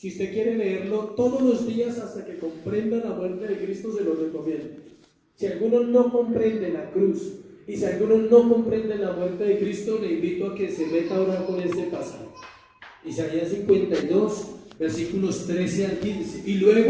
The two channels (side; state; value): both; identical; correlation 1.00